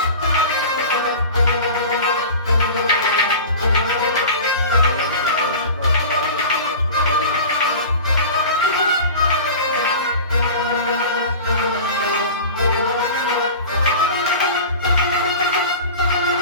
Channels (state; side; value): inverted; both; correlation -0.35